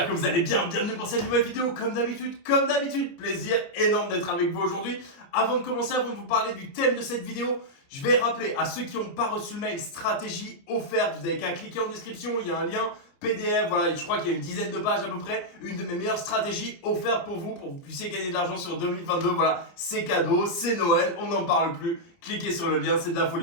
que vous allez bien. Bienvenue pour cette nouvelle vidéo. Comme d'habitude, plaisir énorme d'être avec vous aujourd'hui. Avant de commencer, avant de vous parler du thème de cette vidéo, je vais rappeler à ceux qui n'ont pas reçu le mail stratégie offerte, vous n'avez qu'à cliquer en description, il y a un lien PDF, voilà, je crois qu'il y a une dizaine de pages à peu près, une de mes meilleures stratégies offertes pour que vous puissiez gagner de l'argent sur 2022. Voilà, c'est cadeau, c'est Noël, on n'en parle plus. Cliquez sur le lien, c'est de la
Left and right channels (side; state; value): right; late; 29 ms